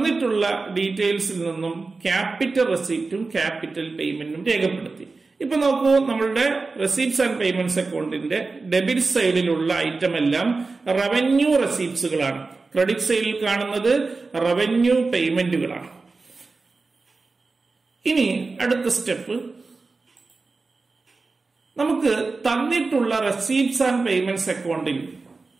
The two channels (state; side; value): quieter; left; 3.9 dB